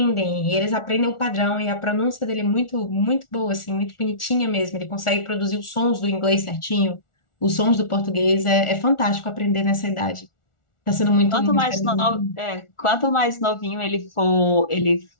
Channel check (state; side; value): late; right; 1.4 ms